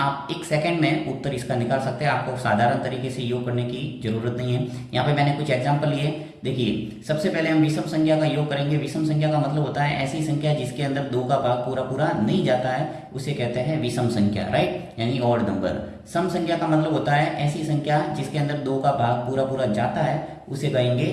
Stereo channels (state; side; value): identical; both; correlation 1.00